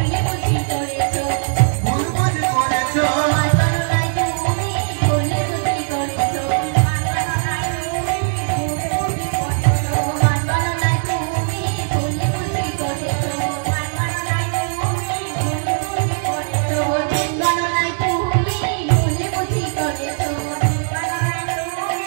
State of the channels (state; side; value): silent; left; digital silence